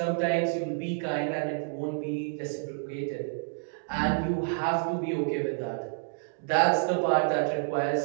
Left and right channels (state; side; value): silent; left; digital silence